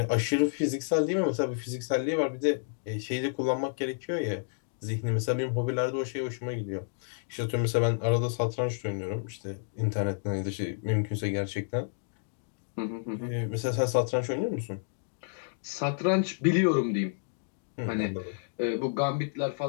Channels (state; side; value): silent; right; digital silence